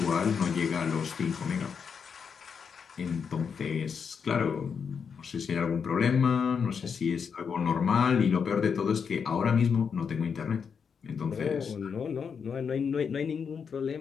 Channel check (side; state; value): right; quieter; 6.4 dB